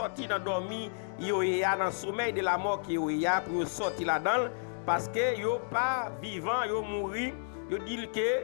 dans dormi, yo y a dans sommeil de la mort qui y a pour sortir là-dedans parce que yo pas vivant, yo mourir, yo dit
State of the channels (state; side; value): silent; right; digital silence